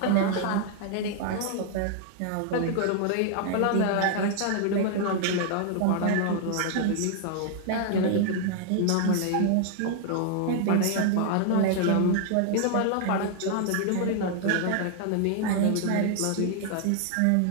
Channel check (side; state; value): both; different; correlation 0.00